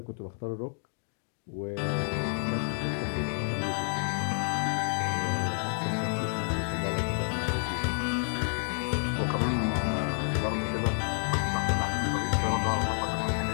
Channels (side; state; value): right; silent; digital silence